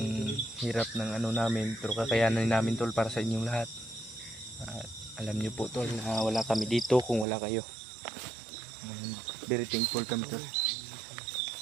hirap ng namin, pero kakayanan namin tol para sa inyong lahat. Alam nyo po tol na wala kami dito kung wala kayo. Very thankful kami tol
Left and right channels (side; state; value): left; drops out; at 7.2 s